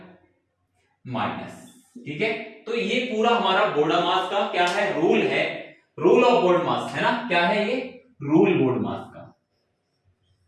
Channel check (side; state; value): both; identical; correlation 1.00